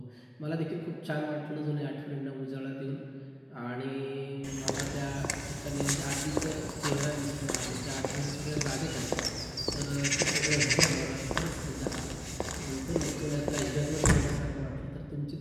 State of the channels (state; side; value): identical; both; correlation 1.00